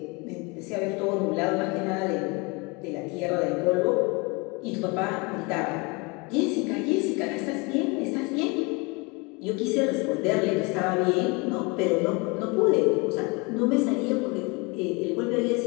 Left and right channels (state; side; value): quieter; right; 28.3 dB